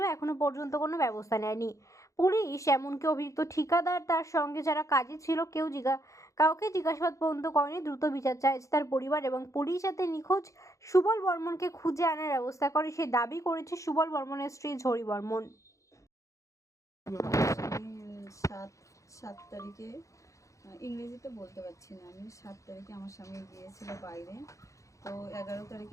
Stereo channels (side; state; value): right; late; 0.15 ms